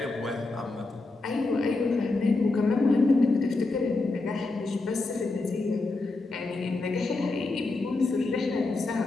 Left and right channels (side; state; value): right; quieter; 3.3 dB